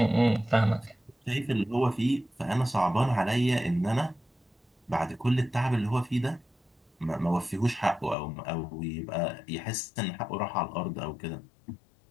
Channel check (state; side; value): drops out; right; at 8.2 s